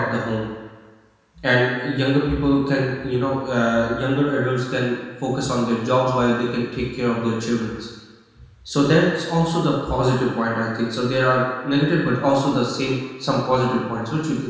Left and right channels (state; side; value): identical; both; correlation 1.00